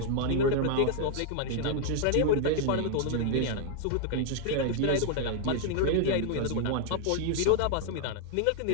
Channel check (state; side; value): different; both; correlation 0.00